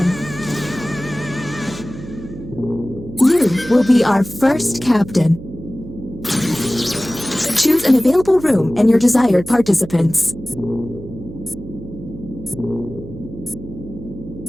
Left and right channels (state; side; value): noise; right; hum, 13 dB below the sound